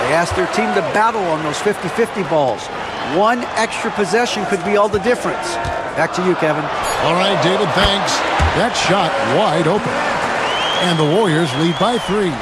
They asked their team to battle on those 50-50 balls. One extra possession could be all the difference. Back to you, Kevin. All right, David, thanks. That shot wide open. And the Warriors lead by 3.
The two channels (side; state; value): both; identical; correlation 1.00